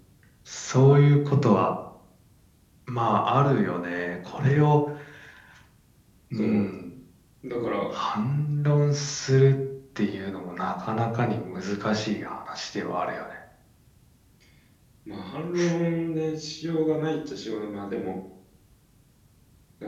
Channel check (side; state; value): both; identical; correlation 1.00